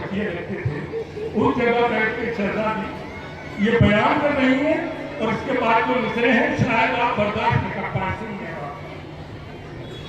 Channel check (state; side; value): identical; both; correlation 1.00